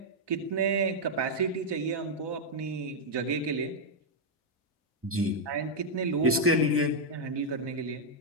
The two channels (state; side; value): normal; both; correlation -0.02